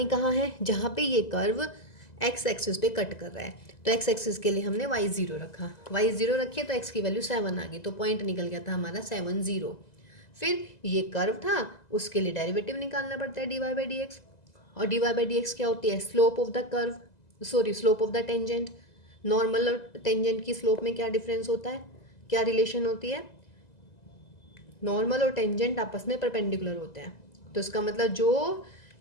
कहाँ है, जहाँ पे ये कर्व एक्स एक्सिस पे कट कर रहा है। तो एक्स एक्सिस के लिए हमने y0 रखा, y0 रखिए तो x की वैल्यू 7 आ गई, तो पॉइंट निकल गया था हमारा 7 0। फिर ये कर्व था, उसके लिए डेरिवेटिव निकालना पड़ता है dy बाई डी एक्स, और dy बाई डी एक्स क्या होती है, slope of the curve, sorry slope of the tangent. Normal और टेंजेंट की स्लोप में क्या डिफरेंस होता है, क्या रिलेशन होती है, नॉर्मल और टेंजेंट आपस में परपेंडिकुलर होते हैं, तो इसका मतलब जो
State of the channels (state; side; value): late; right; 2.0 ms